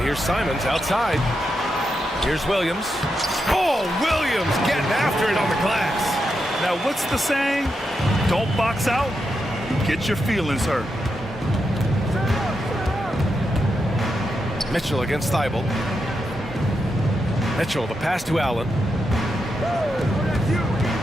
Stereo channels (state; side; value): normal; both; correlation 0.85